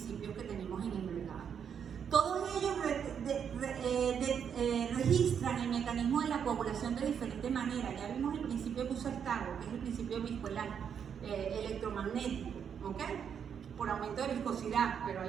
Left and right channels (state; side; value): quieter; left; 7.7 dB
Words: que tenemos en el mercado. Todos ellos registran el mecanismo de la coagulación de diferente manera. Ya vimos el principio que usa el Targo, que es el principio viscoelar, electromagnético, ¿ok? Por aumento de viscosidad, pero